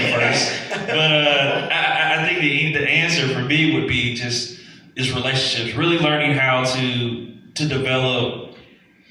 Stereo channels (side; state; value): both; identical; correlation 1.00